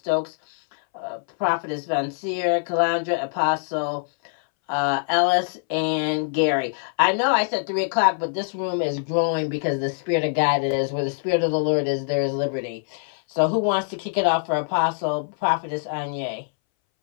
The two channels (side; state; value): right; silent; 62 dB below the other